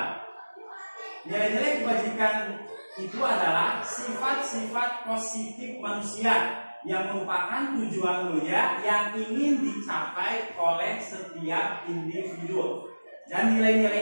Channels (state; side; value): inverted; both; correlation -1.00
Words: Nilai-nilai kebajikan itu adalah sifat-sifat positif manusia yang merupakan tujuan mulia yang ingin dicapai oleh setiap individu. Dan